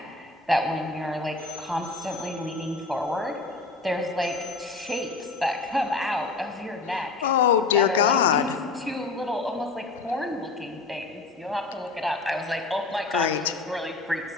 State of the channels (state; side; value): quieter; right; 3.9 dB